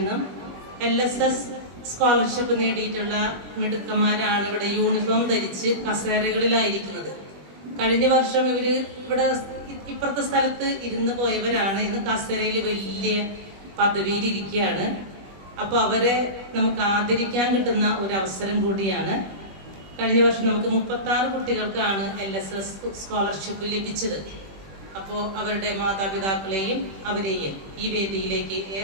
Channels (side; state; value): left; late; 20 ms